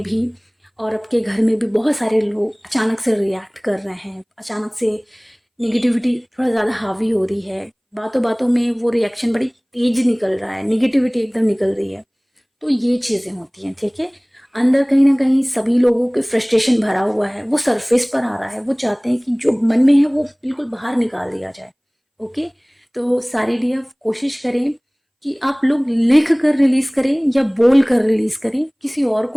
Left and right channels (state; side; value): identical; both; correlation 1.00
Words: भी और आपके घर में भी बहुत सारे लोग अचानक से रिएक्ट कर रहे हैं, अचानक से नेगेटिविटी थोड़ा ज़्यादा हावी हो रही है, बातों बातों में वो रिएक्शन बड़ी तेज निकल रहा है, नेगेटिविटी एकदम निकल रही है। तो ये चीज़ें होती हैं, ठीक है। अंदर कहीं ना कहीं सभी लोगों के फ्रस्ट्रेशन भरा हुआ है, वो सरफेस पर आ रहा है, वो चाहते हैं कि जो मन में है वो बिल्कुल बाहर निकाल दिया जाए। ओके। तो सारी डीएफ कोशिश करें कि आप लोग लिख कर रिलीज करें या बोल कर रिलीज करें, किसी और